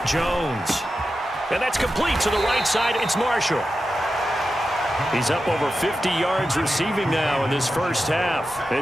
Jones. And that's complete to the right side. It's Marshall. He's up over 50 yards receiving now in this first half.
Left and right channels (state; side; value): normal; both; correlation 0.91